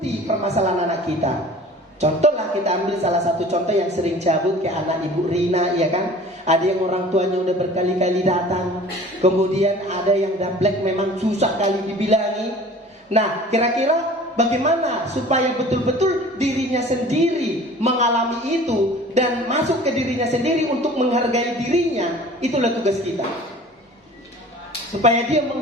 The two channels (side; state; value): both; normal; correlation 0.45